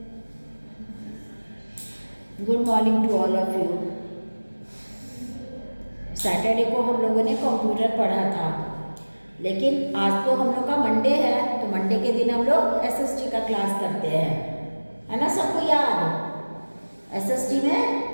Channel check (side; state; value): both; inverted; correlation -1.00